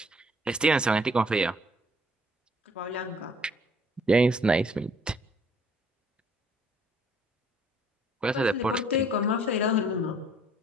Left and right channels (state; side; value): normal; both; correlation 0.60